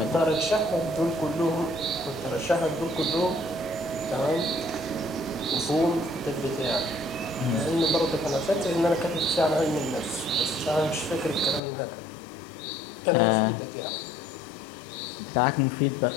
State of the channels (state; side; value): drops out; right; at 11.6 s